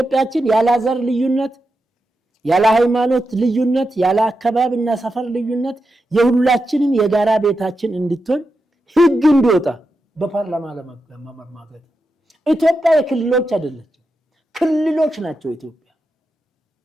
ያለ ዘር ልዩነት፣ ያለ ሃይማኖት ልዩነት፣ ያለ አካባቢና ሰፈር ልዩነት የሁላችንም የጋራ ቤታችን እንድትሆን ህግ እንዲወጣ በፓርላማ ለማማገድ። ኢትዮጵያ የክልሎች አይደለችም፣ ክልሎች ናቸው ኢትዮጵያ።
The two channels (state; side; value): normal; both; correlation 0.88